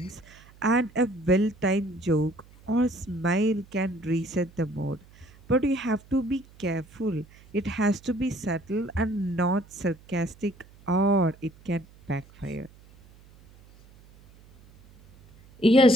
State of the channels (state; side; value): noise; right; hum, 25 dB below the sound